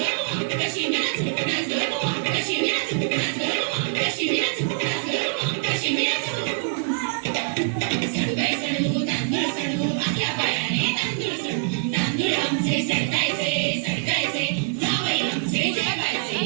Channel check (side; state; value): left; quieter; 33.2 dB